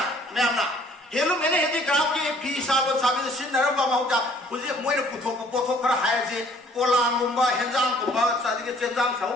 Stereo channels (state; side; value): normal; both; correlation 0.58